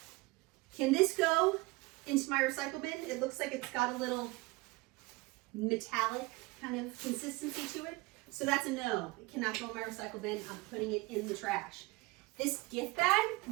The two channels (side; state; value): left; quieter; 23.0 dB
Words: Can this go into my recycle bin? It looks like it's got a little metallic kind of consistency to it. So that's a no. It cannot go in my recycle bin. I'm putting it in the trash. This gift bag,